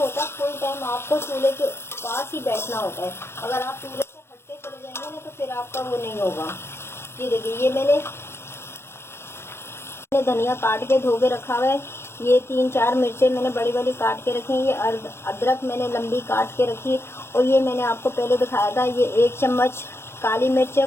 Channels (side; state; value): right; late; 0.12 ms